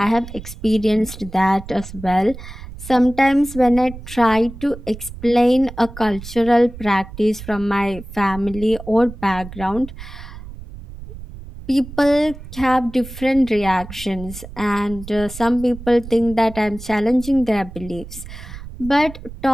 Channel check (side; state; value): right; noise; rumble, 13 dB below the sound